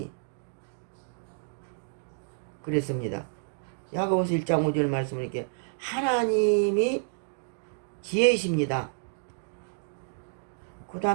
그랬습니다. 야고보서 1장 5절 말씀을 이렇게 하나님이 지혜이십니다. 그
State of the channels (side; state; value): left; silent; digital silence